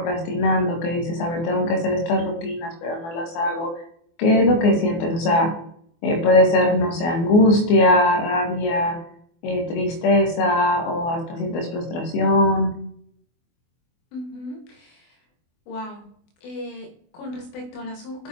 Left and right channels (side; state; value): right; late; 24 ms